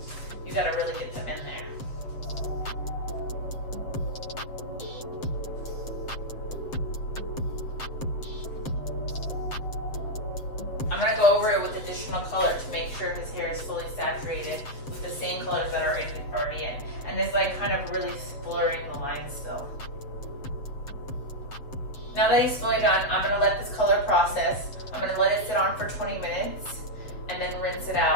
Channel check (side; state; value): right; late; 7.6 ms